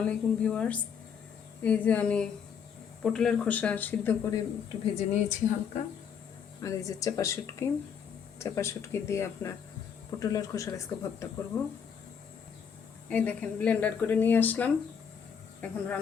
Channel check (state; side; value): quieter; right; 7.2 dB